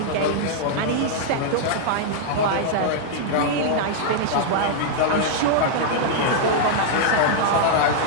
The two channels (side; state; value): both; different; correlation -0.01